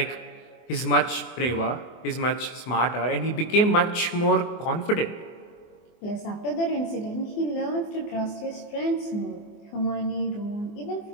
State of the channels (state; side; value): late; right; 24 ms